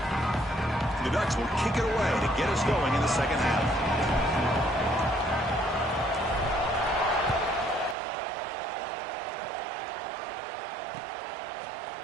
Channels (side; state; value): left; drops out; at 8.0 s